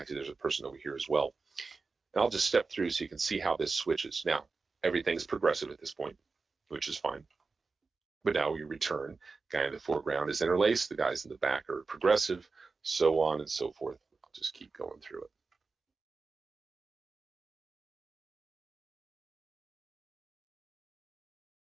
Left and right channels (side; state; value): left; quieter; 4.2 dB